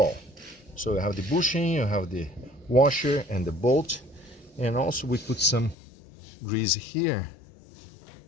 So you have the bushing, you have the washer and the bolt, and also we put some grease here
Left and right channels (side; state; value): right; drops out; at 5.8 s